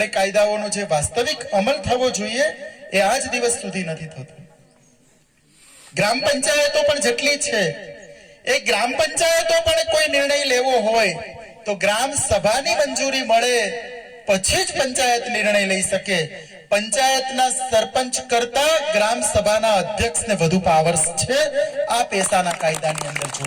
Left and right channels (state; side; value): identical; both; correlation 1.00